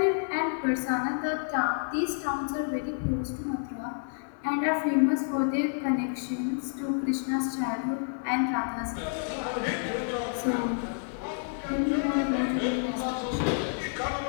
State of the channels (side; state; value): right; silent; 58 dB below the other